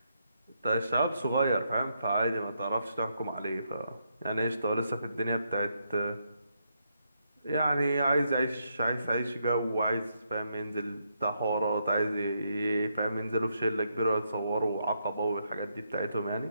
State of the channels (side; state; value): both; inverted; correlation -0.79